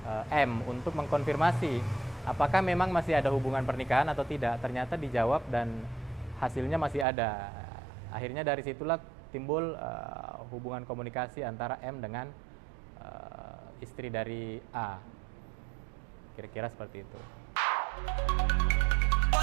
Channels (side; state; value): left; drops out; at 7.1 s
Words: M untuk mengkonfirmasi apakah memang masih ada hubungan pernikahan atau tidak. Ternyata dijawab dan hasilnya masih ada. Akhirnya dari situlah timbul hubungan komunikasi antara M dengan istri dari A. Kira-kira seperti itu.